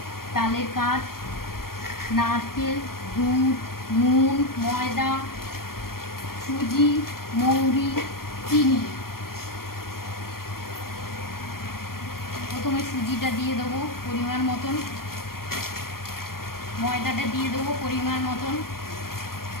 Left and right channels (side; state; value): right; late; 0.93 ms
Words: তালের কাঠ, নারকেল, দুধ, নুন, ময়দা, সুজি, মৌরি, চিনি। প্রথমে সুজিটা দিয়ে দেবো পরিমাণ মতন, ময়দাটা দিয়ে দেবো পরিমাণ মতন,